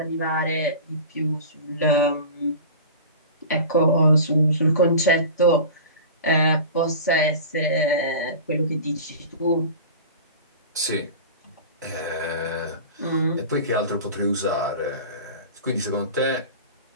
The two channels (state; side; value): inverted; both; correlation -0.35